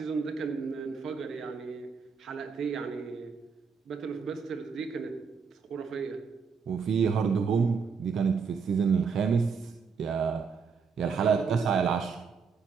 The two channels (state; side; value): quieter; left; 5.7 dB